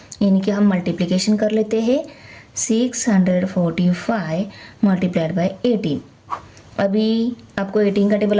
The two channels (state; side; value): identical; both; correlation 1.00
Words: इनकी हम मल्टीप्लिकेशन कर लेते हैं। 645 मल्टीप्लाइड बाय 18। अभी आपको 18 का टेबल